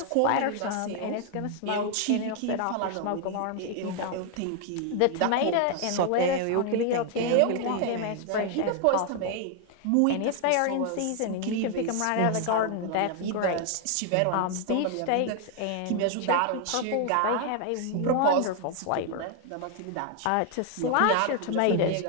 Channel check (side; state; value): both; different; correlation 0.00